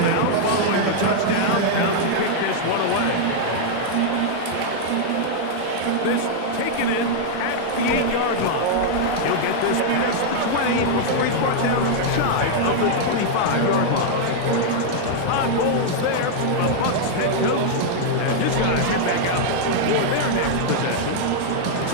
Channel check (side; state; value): both; different; correlation -0.01